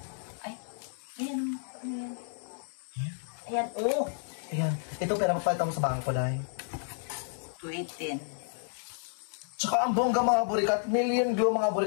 Ay, ayan. Ano yan? Ayan, oh. Ayan. Ito, pera papalitan mo sa bangko dahil. 218. Tsaka ang bongga, mga burikat. Million Glow, mga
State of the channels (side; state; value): right; silent; digital silence